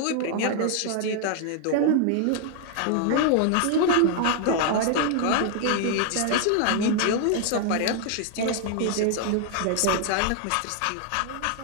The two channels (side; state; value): both; different; correlation 0.00